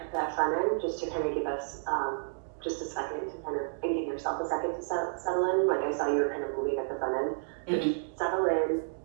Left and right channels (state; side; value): silent; left; digital silence